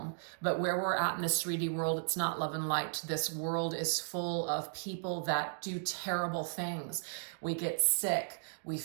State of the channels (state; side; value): silent; left; digital silence